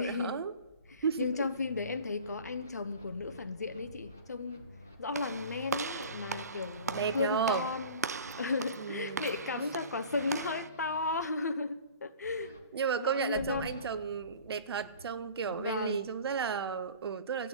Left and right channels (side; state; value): both; inverted; correlation -0.42